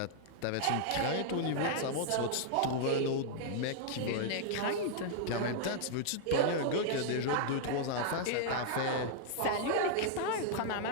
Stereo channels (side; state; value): both; different; correlation -0.01